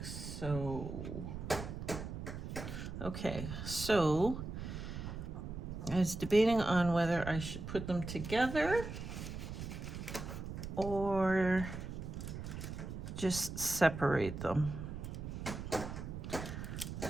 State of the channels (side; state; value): right; noise; rumble, 7 dB below the sound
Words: so. Okay, so I was debating on whether I should put them together or just separate them.